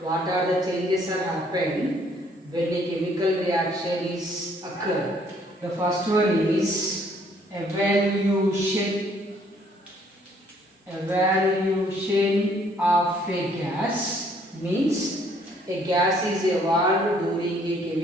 What are the changes are happen when a chemical reaction is occur? The first one is evaluation. Evaluation of a gas means a gas is evolved during a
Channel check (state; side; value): normal; both; correlation 0.64